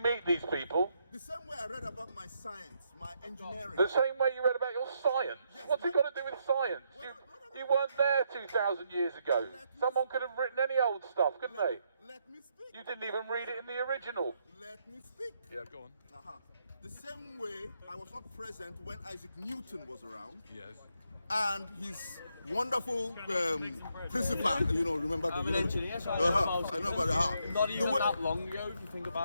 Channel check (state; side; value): inverted; both; correlation -0.77